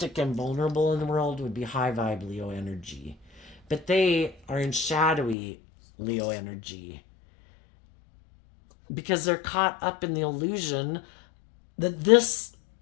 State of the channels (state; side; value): drops out; right; at 5.4 s